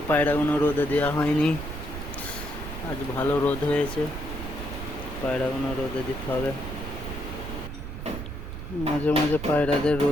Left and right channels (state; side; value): noise; right; rumble, 8 dB below the sound